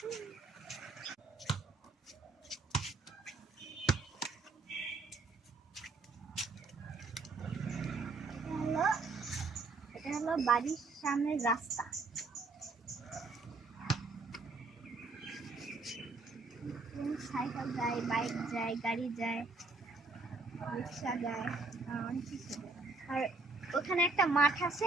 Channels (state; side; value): quieter; left; 3.7 dB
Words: এটা হলো বাড়ির সামনের রাস্তা। সাইকেল যায়, বাইক যায়, গাড়ি যায়, রিক্সা যায়, অনেক কিছু যায়। আর ওখানে একটা মাঠ